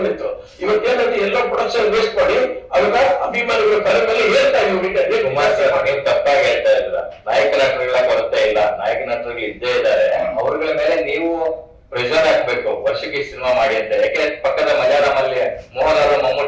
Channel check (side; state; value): both; identical; correlation 1.00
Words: ಇವತ್ತೇನಂತ ಎಲ್ಲ ಪ್ರೊಡಕ್ಷನ್ ವೇಸ್ಟ್ ಮಾಡಿ ಅದನ್ನ ಅಭಿಮಾನಿಗಳ ತಲೆ ಮೇಲೆ ಹೇಳ್ತಾ ನೀವು ತಪ್ಪಾಗಿ ಹೇಳ್ತಾ ಇಲ್ಲ. ನಾಯಕ ನಟರುಗಳ ಕೊರತೆ ಇಲ್ಲ, ನಾಯಕ ನಟರುಗಳು ಇದ್ದೇ ಇದ್ದಾರೆ. ಅವ್ರಗಳ ಮೇಲೆ ನೀವು ಪ್ರೆಷರ್ ಹಾಕ್ಬೇಕು, ವರ್ಷಕ್ಕೆ ಸಿನಿಮಾ ಮಾಡಿ ಅಂತ. ಯಾಕೆ ಪಕ್ಕದ ಮಲಯಾಳಂ ಅಲ್ಲಿ ಮೋಹನ್ ಅವರು,